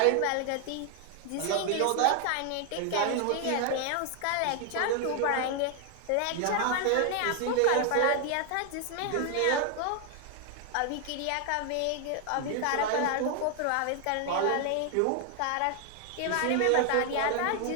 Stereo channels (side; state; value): both; different; correlation 0.00